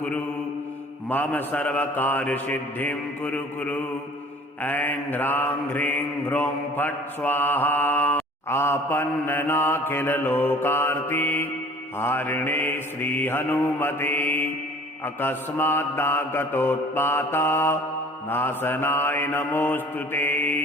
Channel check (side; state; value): both; normal; correlation 0.49